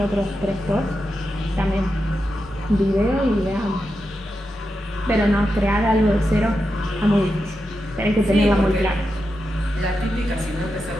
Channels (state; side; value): normal; both; correlation 0.88